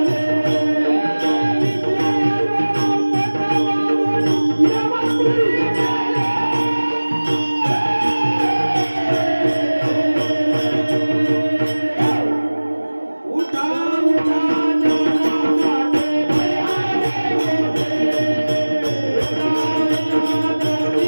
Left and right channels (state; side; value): inverted; both; correlation -1.00